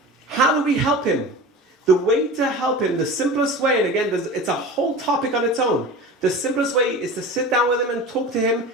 How do we help him? The way to help him, the simplest way, and again, it's a whole topic on its own. The simplest way is to sit down with him and talk to him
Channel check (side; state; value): both; normal; correlation 0.33